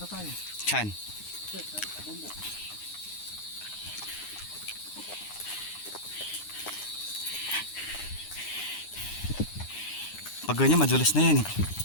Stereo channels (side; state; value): right; late; 9.8 ms